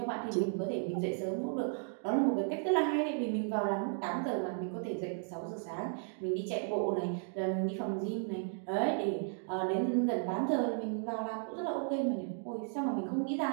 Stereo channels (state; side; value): silent; left; 55 dB below the other